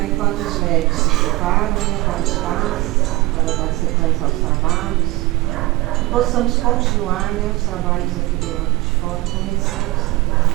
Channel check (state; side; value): quieter; left; 20.6 dB